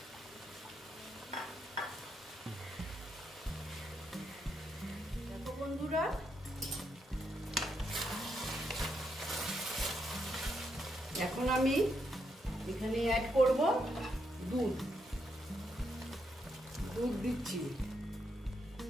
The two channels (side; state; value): both; normal; correlation 0.79